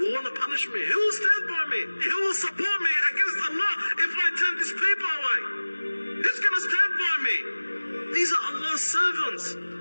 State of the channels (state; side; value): inverted; both; correlation -1.00